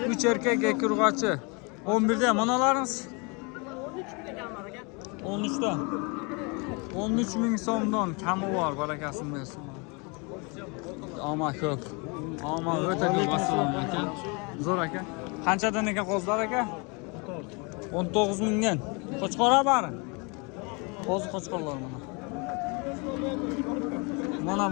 3 erkak, 2 urg'ochi. 11 dan manalarimiz 13 dan. 13 ming so'mdan kami bor, barakasini bersin. Ama ko'p. Ama o'ta ko'p assalomu aka. Zo'r aka. Qanchadan ekan qo'zlar aka? 19 mingdan. Qo'chqora bari. Qo'zi qo'chqorlar mana. Mana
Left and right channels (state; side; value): quieter; right; 31.1 dB